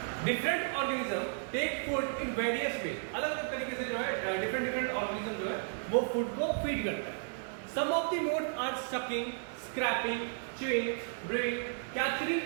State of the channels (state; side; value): silent; left; 55 dB below the other